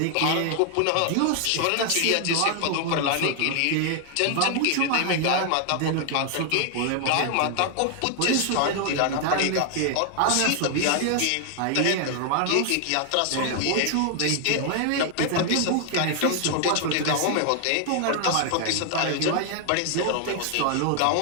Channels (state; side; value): different; both; correlation 0.00